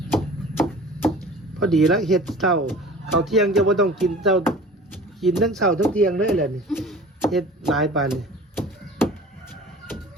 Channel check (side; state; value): both; normal; correlation 0.42